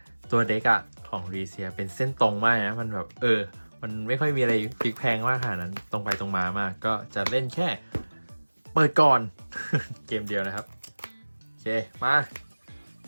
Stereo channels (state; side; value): inverted; both; correlation -1.00